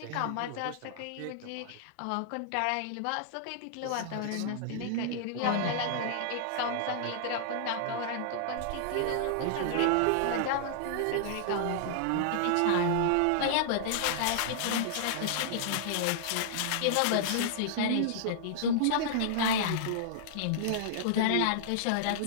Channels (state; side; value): different; both; correlation -0.01